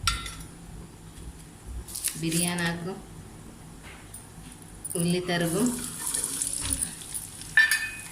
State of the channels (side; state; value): both; identical; correlation 1.00